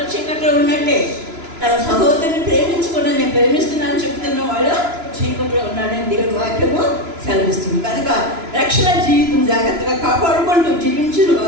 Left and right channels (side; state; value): left; late; 2.9 ms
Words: చీకట్లో ఉన్నట్టే. తన సహోదరుని ప్రేమించకుండా నేను ప్రేమిస్తున్నానని చెప్తున్న వాడు చీకట్లో ఉన్నాడని దేవుని వాక్యము సెలవిస్తుంది. కనుక రక్షణ జీవితం జాగ్రత్తగా కాపాడుకుంటూ జీవించిన